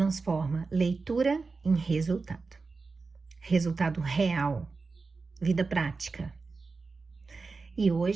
leitura em resultado. Resultado real, vida prática. E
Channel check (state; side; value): quieter; left; 4.2 dB